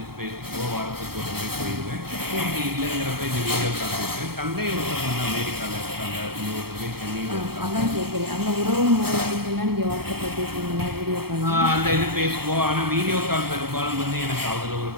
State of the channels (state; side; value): late; left; 0.95 ms